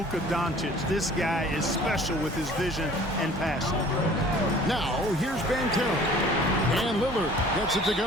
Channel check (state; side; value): normal; both; correlation 0.50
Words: Doncic. This guy is special with his vision and passing. Now, here's Banchero. And Lillard gets it to